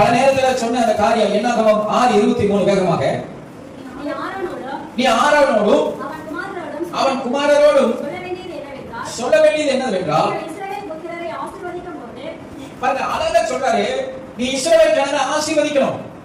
நேரத்தில் சொன்ன அந்த காரியம் என்னாகும்? 6:23 வேகமாக. நீ ஆரோனோடும் அவன் குமாரரோடும் சொல்ல வேண்டியது என்னவென்றால், அழகா சொல்றாரு, நீ இஸ்ரவேல் ஜனங்களை ஆசீர்வதிக்கணும்.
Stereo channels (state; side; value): identical; both; correlation 1.00